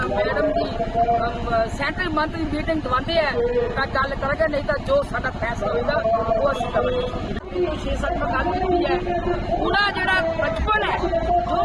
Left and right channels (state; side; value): identical; both; correlation 1.00